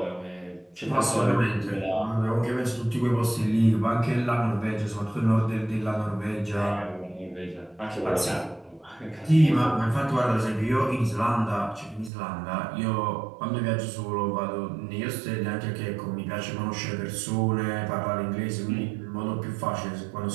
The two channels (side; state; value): left; drops out; at 12.1 s